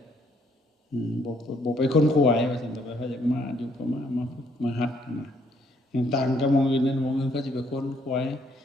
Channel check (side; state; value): both; normal; correlation 0.68